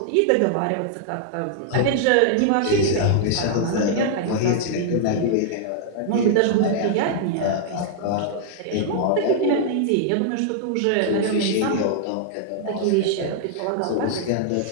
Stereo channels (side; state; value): both; different; correlation -0.01